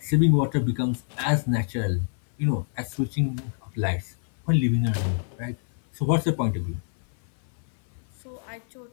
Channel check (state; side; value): silent; right; 57 dB below the other